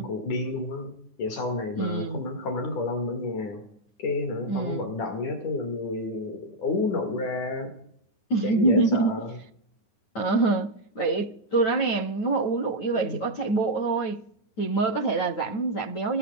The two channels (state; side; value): late; right; 9.7 ms